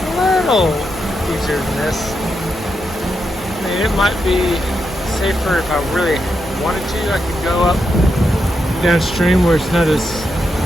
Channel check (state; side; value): normal; both; correlation 0.84